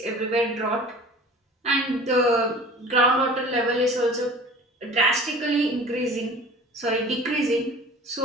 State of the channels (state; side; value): normal; both; correlation 0.43